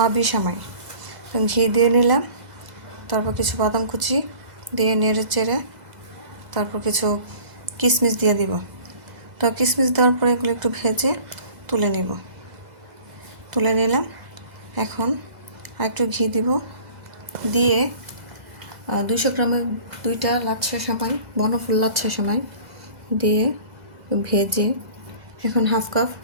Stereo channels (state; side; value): late; left; 2.0 ms